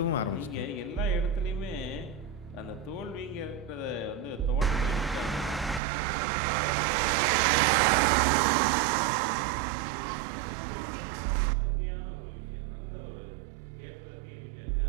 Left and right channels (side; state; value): left; drops out; at 5.8 s